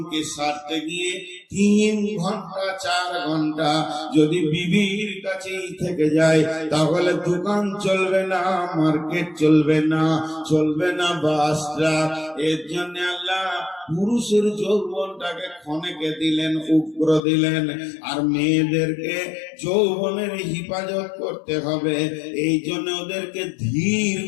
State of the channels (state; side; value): drops out; right; at 17.2 s